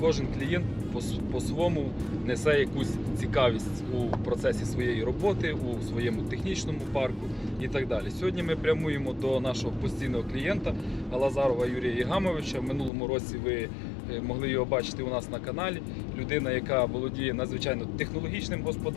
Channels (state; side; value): drops out; right; at 12.9 s